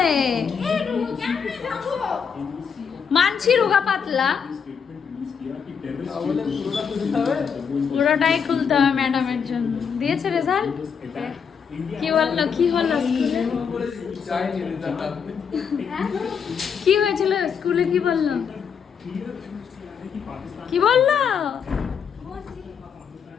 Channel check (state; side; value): quieter; right; 6.7 dB